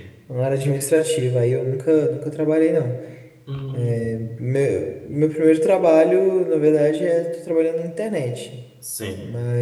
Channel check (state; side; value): identical; both; correlation 1.00